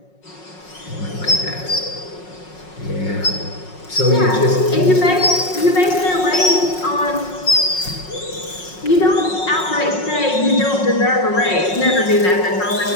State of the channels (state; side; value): late; right; 5.5 ms